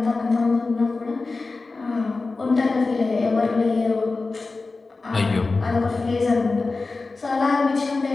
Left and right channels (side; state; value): right; quieter; 3.8 dB